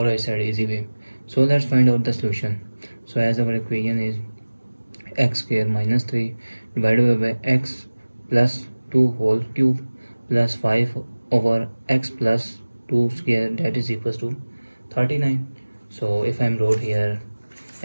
I said easy way. So let's find out the solution. So as our equation is x square minus 3 divided by x plus 2 whole cube plus 5 over x plus 2 square, that is equals to 39. So if I'm wrote here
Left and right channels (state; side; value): inverted; both; correlation -1.00